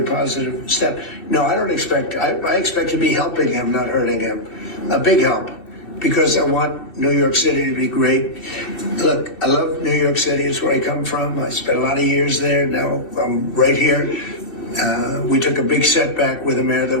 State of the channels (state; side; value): late; right; 2.7 ms